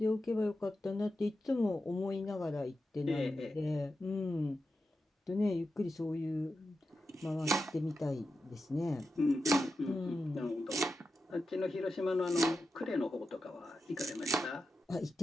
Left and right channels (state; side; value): normal; both; correlation 0.90